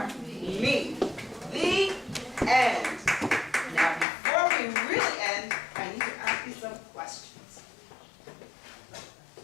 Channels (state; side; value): drops out; right; at 4.0 s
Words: me. The end. Now, before we really end, I need to ask you some questions.